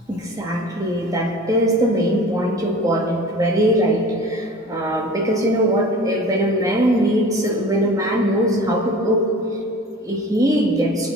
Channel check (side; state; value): both; normal; correlation 0.41